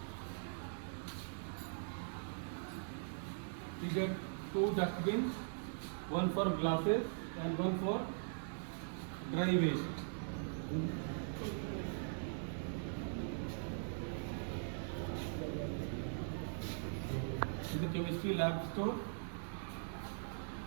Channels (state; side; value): silent; left; digital silence